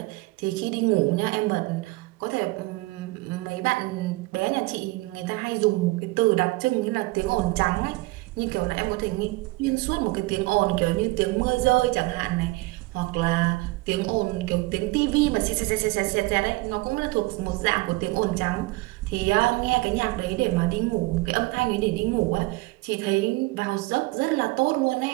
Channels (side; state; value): left; quieter; 22.2 dB